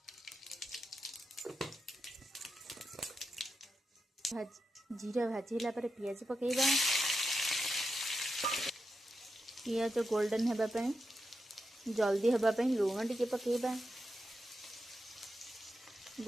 जीरा भाजीला परे पियाज पकेइबा, पियाज गोल्डन हेबा पई जल्दी हेबा पई लुण टिके पकेइबा,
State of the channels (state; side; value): normal; both; correlation 0.87